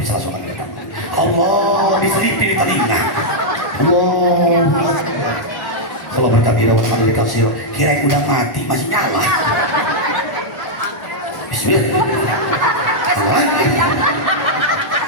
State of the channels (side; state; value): right; late; 1.1 ms